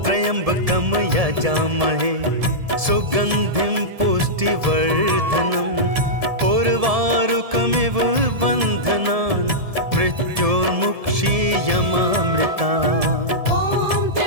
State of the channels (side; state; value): left; late; 1.7 ms